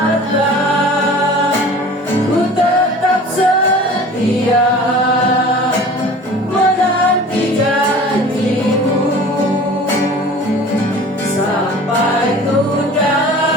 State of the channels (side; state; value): both; normal; correlation 0.43